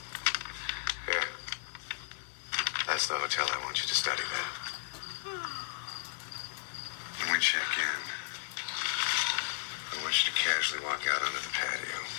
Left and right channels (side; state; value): right; silent; digital silence